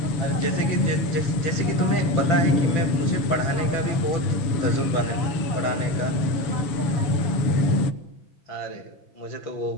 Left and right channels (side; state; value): right; late; 7.0 ms